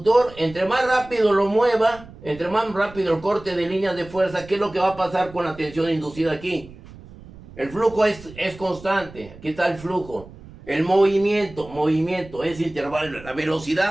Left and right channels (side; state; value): right; noise; rumble, 19 dB below the sound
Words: entre más rápido lo mueva, entre más rápido el corte de líneas de fuerza, ¿qué es lo que va a pasar con la tensión inducida aquí? El flujo es constante, aquí está el flujo. El movimiento es intervalo, la